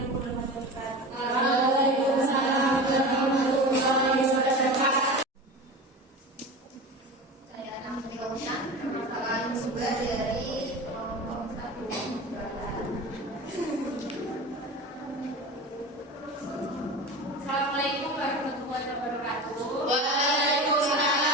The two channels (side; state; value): both; normal; correlation 0.31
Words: bermanfaat. Saya akan menjelaskan permasalahan juga dari kelompok 1. Assalamualaikum warahmatullahi wabarakatuh.